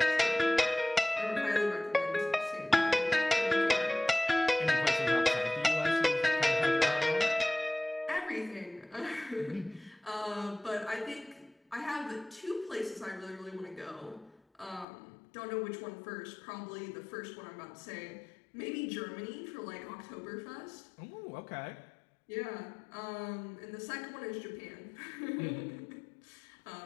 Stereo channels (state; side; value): drops out; right; at 14.9 s